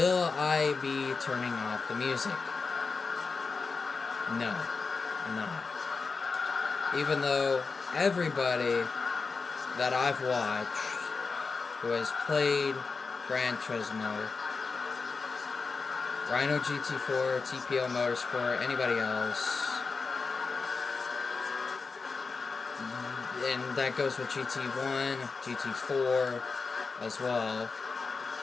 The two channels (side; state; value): right; quieter; 4.5 dB